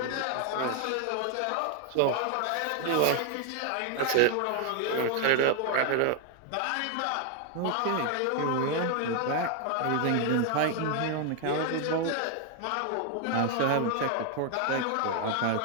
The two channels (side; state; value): both; different; correlation 0.01